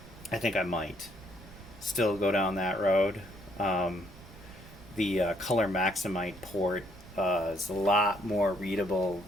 I think I might still go down that road. The Color Maximite port is a lot more readable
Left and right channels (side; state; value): right; noise; rumble, 18 dB below the sound